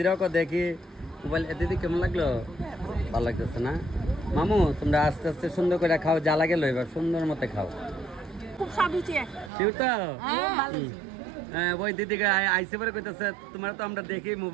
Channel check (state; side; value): drops out; left; at 9.5 s